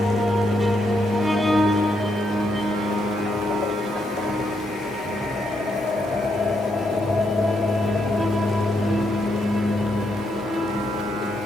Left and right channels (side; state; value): both; normal; correlation 0.78